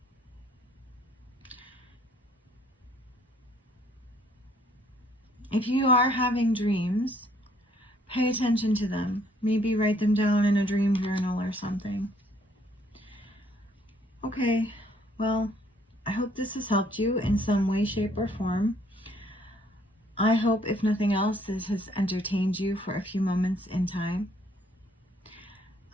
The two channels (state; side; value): normal; both; correlation 0.64